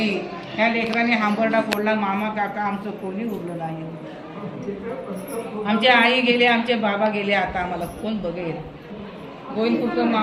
ह्या लेकरांनी हांबरडा फोडला. मामा काका आमचं कोणी उरलं नाही. आमचे आई गेले, आमचे बाबा गेले, आता आम्हाला कोण बघेल? गोविंदपूरकर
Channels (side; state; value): both; identical; correlation 1.00